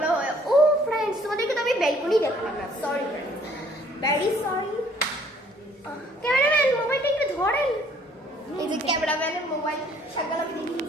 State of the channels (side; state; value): both; normal; correlation 0.60